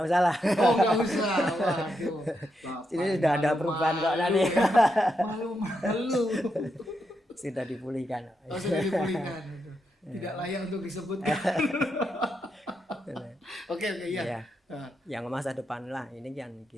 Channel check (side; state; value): both; normal; correlation 0.83